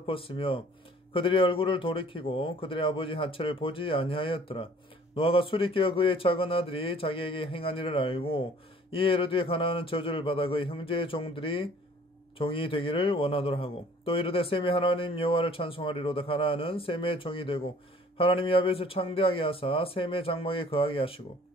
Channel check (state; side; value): normal; both; correlation 0.54